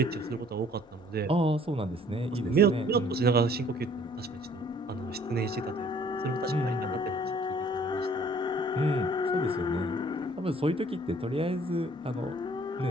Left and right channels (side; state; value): both; normal; correlation 0.57